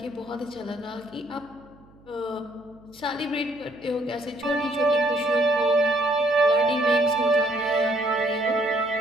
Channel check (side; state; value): right; noise; hum, 27 dB below the sound